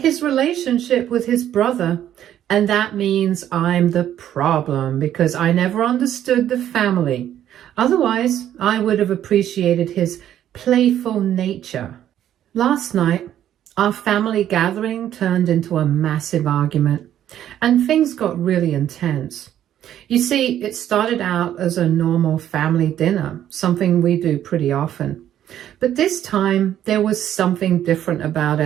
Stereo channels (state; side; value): quieter; left; 11.1 dB